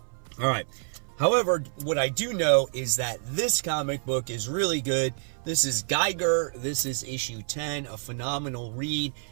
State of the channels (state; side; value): silent; left; 58 dB below the other